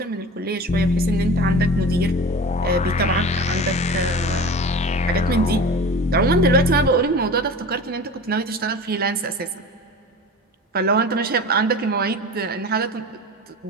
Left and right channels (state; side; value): normal; both; correlation 0.35